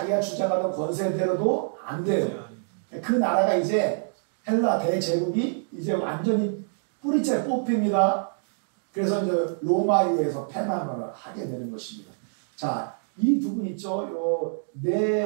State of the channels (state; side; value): silent; left; digital silence